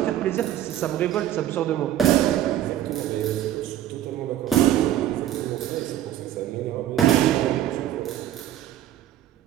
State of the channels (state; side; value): quieter; left; 12.1 dB